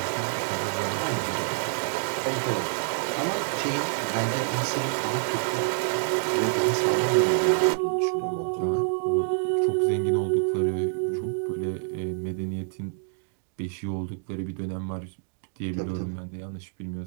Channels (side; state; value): left; silent; digital silence